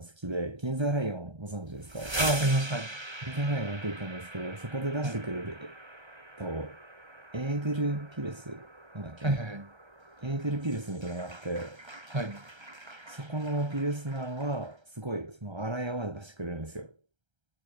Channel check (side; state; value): left; late; 1.3 ms